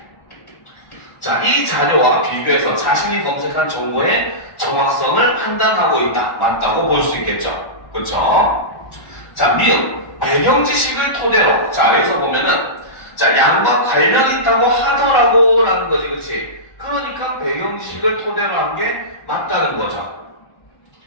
자, 이 자료와 비교해서 자신이 검색한 정보의 정확성을 판단하고 있다. 맞다고 볼 수 있겠죠. 그렇죠? 자, 미음. 배경 지식을 토대로. 자, 여기서 보면은 자, 양과 관련 있다고 하더라고 라는 거지, 그치? 그러니까 배경 지식을 토대로 한 게 맞다는 거죠.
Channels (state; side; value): late; right; 1.4 ms